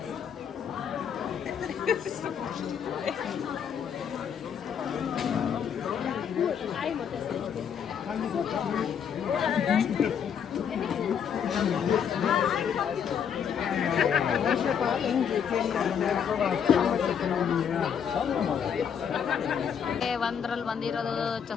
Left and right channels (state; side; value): quieter; right; 7.8 dB